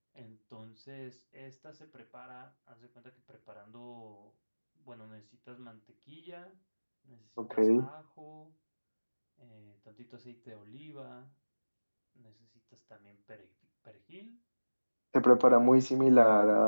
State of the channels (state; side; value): inverted; both; correlation -1.00